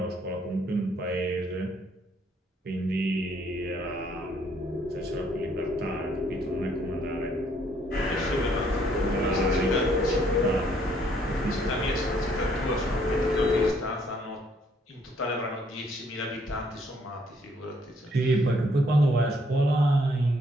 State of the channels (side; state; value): both; normal; correlation 0.67